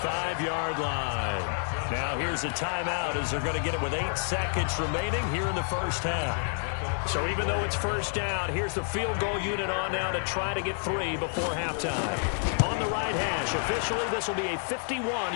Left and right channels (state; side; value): silent; right; 59 dB below the other